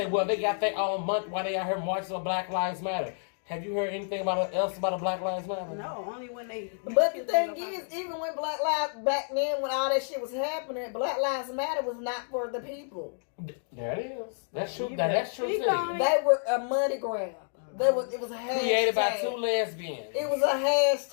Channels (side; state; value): right; silent; digital silence